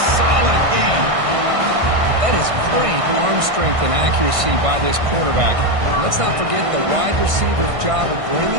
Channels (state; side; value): late; left; 1.6 ms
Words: solid gain. That is great arm strength and accuracy by this quarterback. And let's not forget the wide receiver's job of